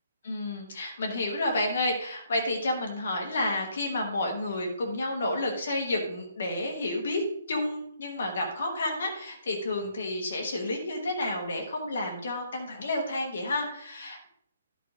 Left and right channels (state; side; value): inverted; both; correlation -0.70